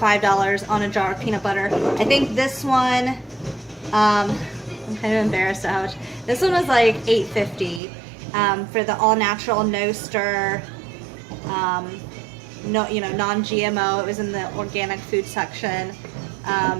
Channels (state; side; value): drops out; left; at 7.8 s